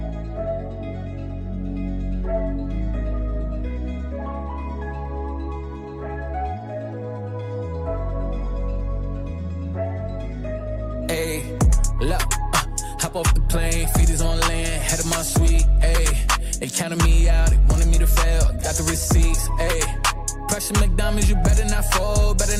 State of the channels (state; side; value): identical; both; correlation 1.00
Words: Ayy, look, hop off the plane, feet is on land, head of my suite, ayy. They counted me out, they wanted me to fail, got the receipts, ayy. Pressure McDonald's, you better not fold, better